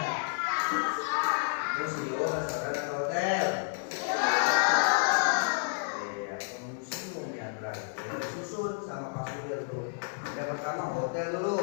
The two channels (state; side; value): silent; right; 57 dB below the other